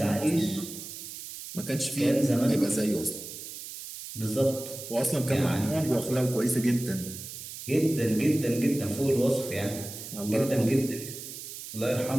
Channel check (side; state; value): right; noise; hiss, 11 dB below the sound